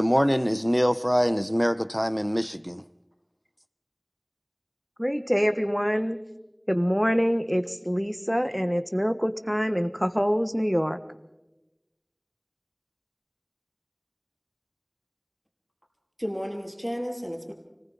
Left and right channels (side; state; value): both; identical; correlation 1.00